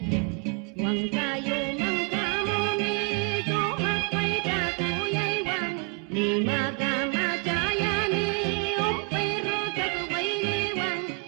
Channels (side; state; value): left; quieter; 36.5 dB